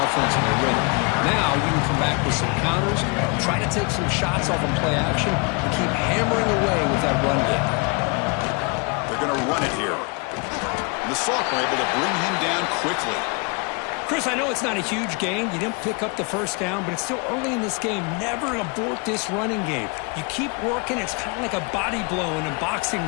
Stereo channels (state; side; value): quieter; right; 32.0 dB